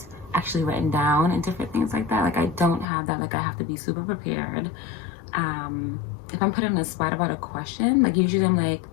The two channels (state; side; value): drops out; right; at 2.9 s